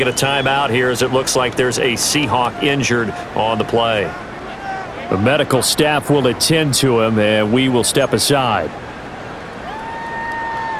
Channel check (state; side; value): identical; both; correlation 1.00